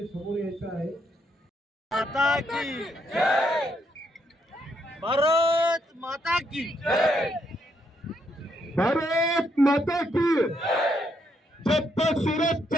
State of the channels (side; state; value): both; normal; correlation 0.76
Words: समोर यायचं आहे। माता की जय, भारत माता की जय, भारत माता की जय। जब तक सूरज